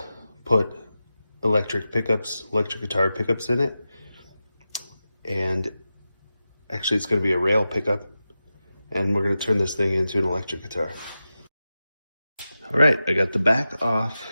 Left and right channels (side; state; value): both; inverted; correlation -0.92